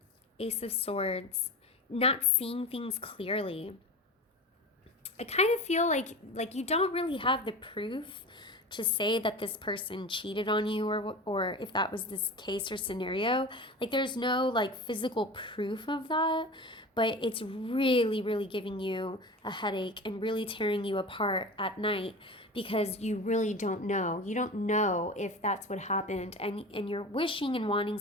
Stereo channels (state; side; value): normal; both; correlation 0.32